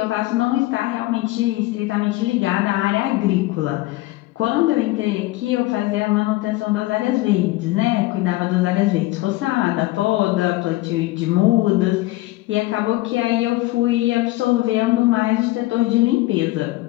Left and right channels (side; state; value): right; quieter; 18.9 dB